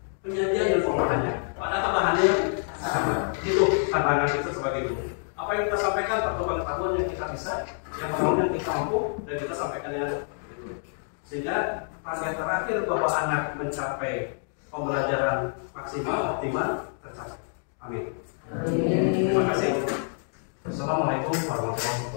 penyajian dan pengolahannya, padahal bahannya yang sama. Itu tantangan kita sebagai guru. Apa yang kita sampaikan atau pengetahuan yang kita bisa, yang kita mampu, dan kita sampaikan dengan itu. Sehingga target terakhir bahwa anak mencapai pembelajaran maksimal optimal tercapai. Amin. Terima kasih. Assalamualaikum warahmatullahi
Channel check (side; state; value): right; silent; 60 dB below the other